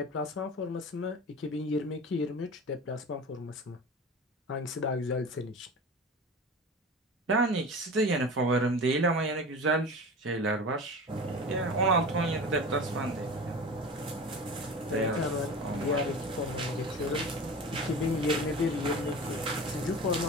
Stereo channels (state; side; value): normal; both; correlation 0.34